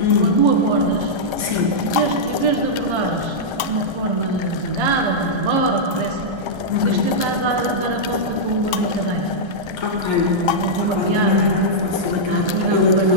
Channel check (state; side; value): late; left; 1.3 ms